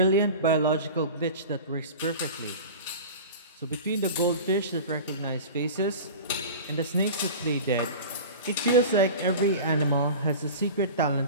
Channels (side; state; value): both; inverted; correlation -0.34